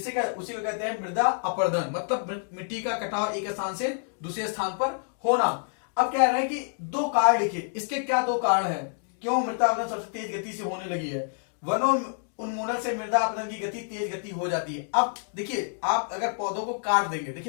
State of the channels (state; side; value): silent; right; digital silence